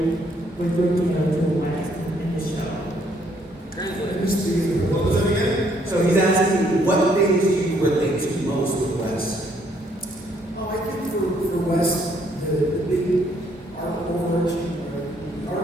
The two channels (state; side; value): normal; both; correlation 0.68